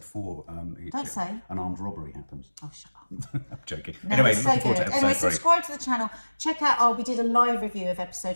4, don't say. an armed robbery happens. Oh, shut up. I'm joking. No, anyway, it's so looking forward to good. episode 3. Subscribe to the channel. Check out, we did a live review of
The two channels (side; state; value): both; inverted; correlation -1.00